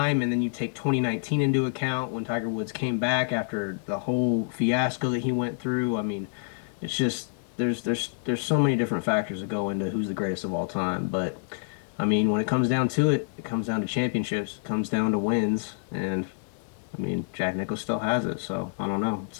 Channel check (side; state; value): right; silent; digital silence